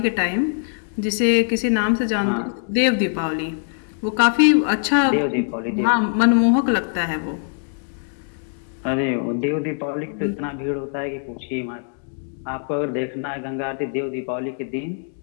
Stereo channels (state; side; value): silent; right; digital silence